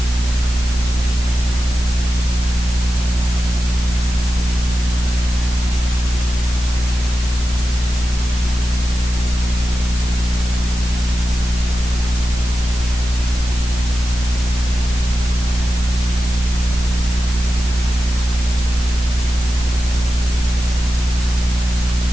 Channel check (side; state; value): both; normal; correlation 0.92